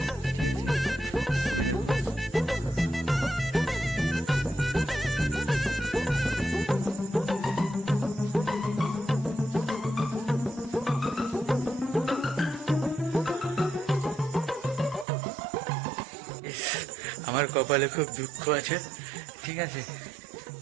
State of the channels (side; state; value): left; drops out; at 15.1 s